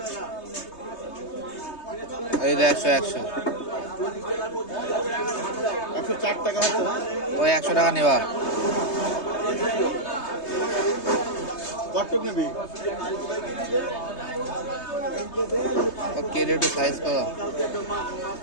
এই 100 104 টাকা হচ্ছে। ওই 100 টাকা নেবা। কতটুক নেবি? কেটে একটু সাইজ করো,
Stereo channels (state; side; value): late; right; 3.2 ms